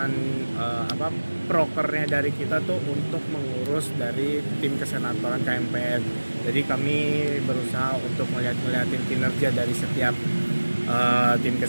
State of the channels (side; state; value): both; inverted; correlation -1.00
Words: prokernya dari kita tuh untuk mengurus dari tim kesenatoran KMPN. Jadi kami berusaha untuk ngeliatin kinerja dari setiap tim